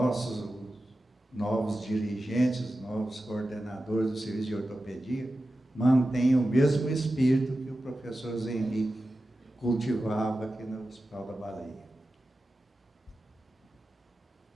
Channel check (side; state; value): both; normal; correlation 0.93